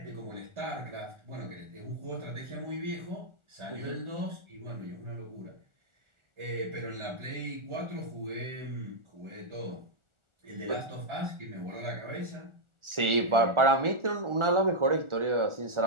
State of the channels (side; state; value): left; late; 1.4 ms